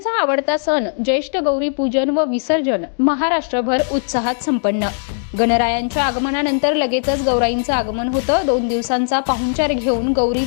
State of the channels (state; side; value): silent; right; digital silence